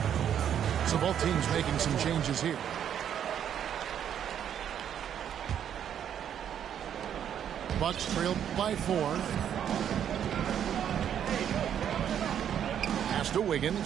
So both teams making some changes here. Bucks trailed by 4. Pass to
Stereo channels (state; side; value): quieter; left; 9.3 dB